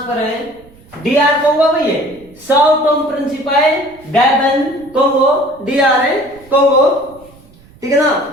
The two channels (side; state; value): right; noise; rumble, 26 dB below the sound